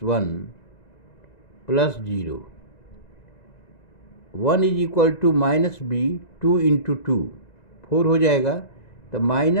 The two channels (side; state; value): right; late; 1.9 ms